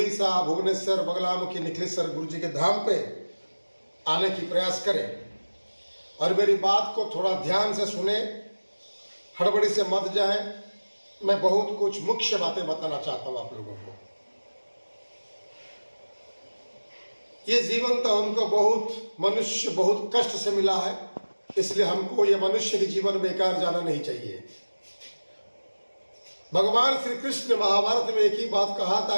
भुवनेश्वर बगलामुखी निखिलेश्वर गुरु जी के धाम पे आने की प्रयास करें। और मेरी बात को थोड़ा ध्यान से सुने, हड़बड़ी से मत जाए। मैं बहुत कुछ मुख्य बातें बताना चाहता हूं आप लोगों को। ये जीवन तो हमको मनुष्य बहुत कष्ट से मिला है, इसलिए हमको ये मनुष्य के जीवन बेकार जाना नहीं चाहिए। भगवान श्री कृष्ण महाभारत में एक ही बात कहा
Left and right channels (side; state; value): both; inverted; correlation -1.00